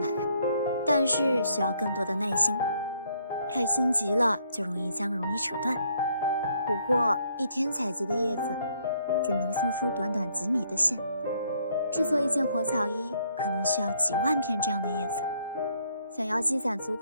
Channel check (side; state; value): both; inverted; correlation -0.69